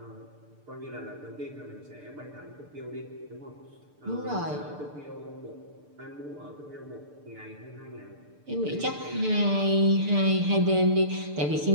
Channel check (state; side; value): late; left; 6.8 ms